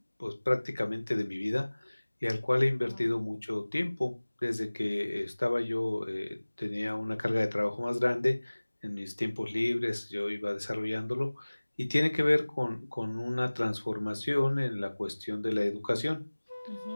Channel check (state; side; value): inverted; both; correlation -1.00